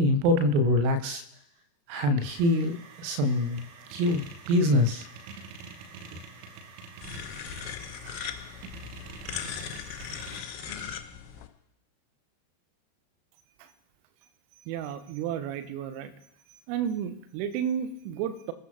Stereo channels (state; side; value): late; left; 35 ms